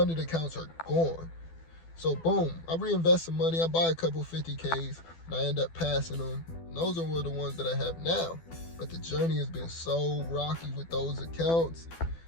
accounts are gone. So boom, I reinvest some money, I buy a couple 50Ks, and I end up passing them. And those are the ones that I have now. But the journey has been so rocky with those accounts.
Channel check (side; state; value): right; late; 12 ms